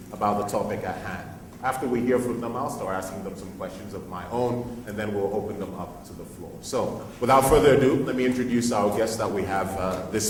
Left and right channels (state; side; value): identical; both; correlation 1.00